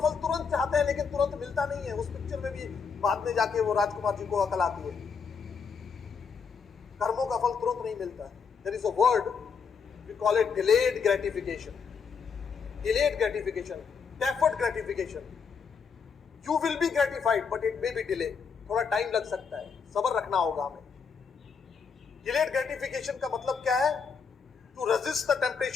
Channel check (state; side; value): quieter; right; 5.9 dB